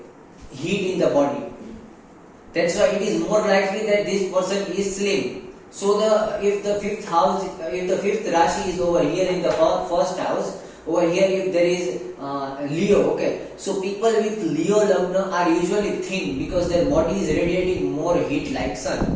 heat in the body. That's why it is more likely that this person is slim. So if the fifth Rashi is over here in the first house, over here if there is Leo, okay, so people with Leo lagna are usually thin because their body is radiating more heat like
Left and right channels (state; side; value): identical; both; correlation 1.00